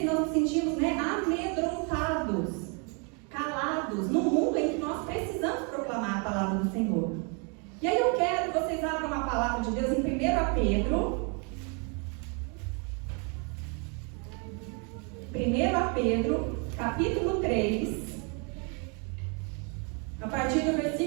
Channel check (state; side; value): quieter; left; 35.6 dB